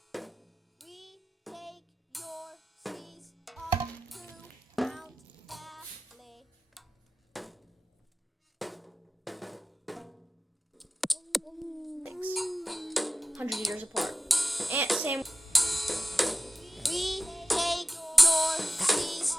We take your seas up to Mount Valley. thanks 100 years apart. And same. We take your seas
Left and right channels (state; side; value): normal; both; correlation 0.95